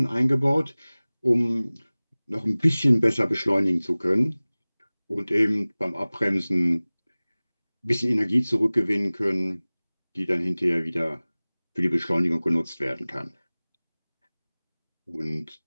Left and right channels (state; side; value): inverted; both; correlation -0.99